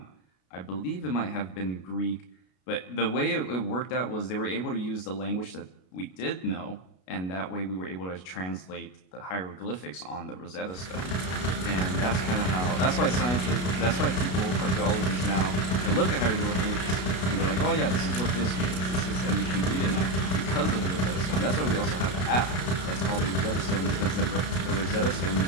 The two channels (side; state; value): right; late; 33 ms